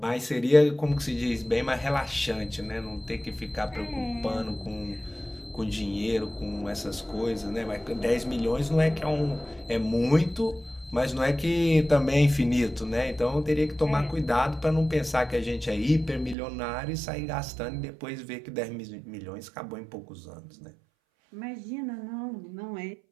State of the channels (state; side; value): drops out; left; at 16.4 s